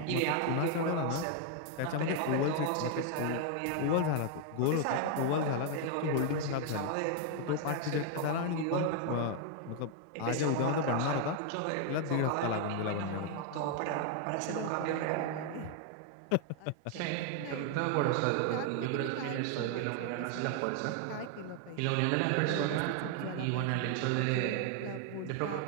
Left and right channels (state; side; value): different; both; correlation 0.00